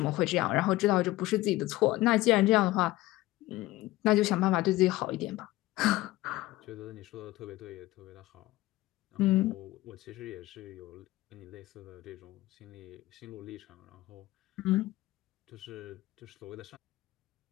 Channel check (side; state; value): right; quieter; 17.7 dB